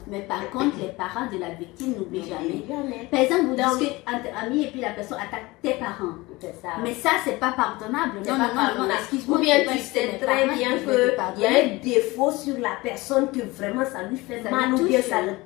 mais par contre, les parents de la victime n'oublient jamais. Par exemple, vous discutez entre amis et puis la personne attaque tes parents. Ça. Mais ça, c'est pas pardonnable. Non, excuse-moi. Ou bien tu sais très bien qu'il y a un défaut sur la personne que vraiment ça lui fait mal ou bien ça le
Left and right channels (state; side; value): quieter; right; 21.7 dB